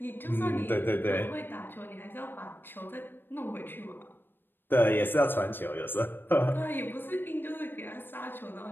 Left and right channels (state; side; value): late; right; 0.097 ms